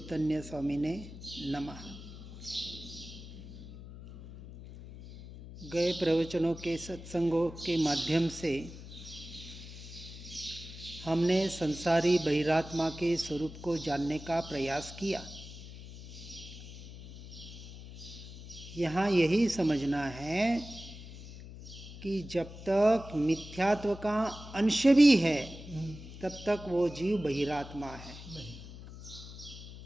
स्वामी ने नमः। गए प्रवचनों के सत्संगों के माध्यम से हमने संसारी बहिरात्मा के स्वरूप को जानने का प्रयास किया। यहाँ यही समझना है कि जब तक मिथ्यात्व का अंश भी है तब तक वो जीव बहिरात्मा है,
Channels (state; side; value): noise; left; hum, 14 dB below the sound